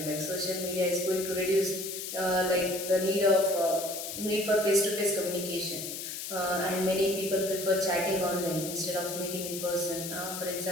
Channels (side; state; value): left; noise; hiss, 7 dB below the sound